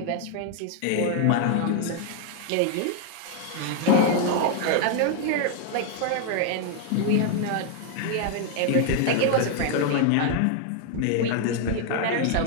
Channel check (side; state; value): both; different; correlation 0.00